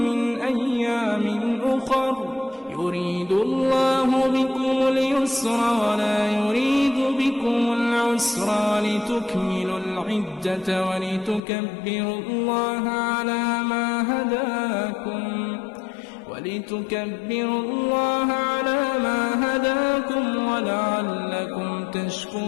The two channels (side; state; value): right; drops out; at 11.4 s